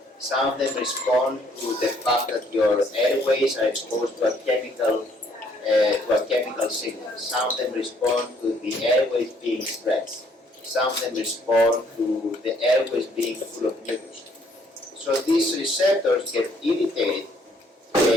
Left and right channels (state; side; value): normal; both; correlation 0.65